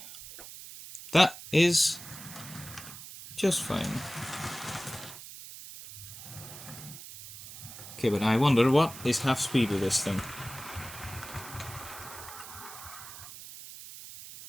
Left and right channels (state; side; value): noise; right; hiss, 13 dB below the sound